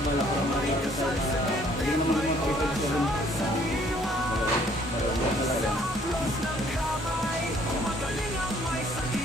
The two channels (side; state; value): both; normal; correlation 0.61